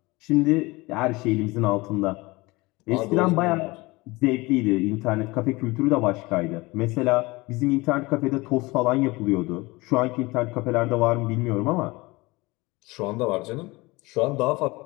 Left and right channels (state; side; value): quieter; right; 22.8 dB